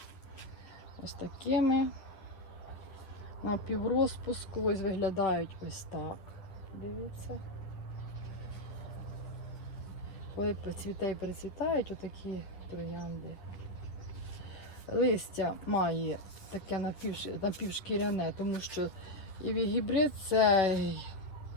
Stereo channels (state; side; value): late; right; 10 ms